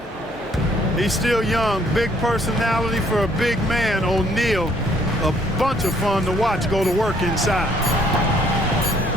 He's still young. Big personality for a big man, O'Neal. a bunch of fun to watch go to work inside.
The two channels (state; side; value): normal; both; correlation 0.64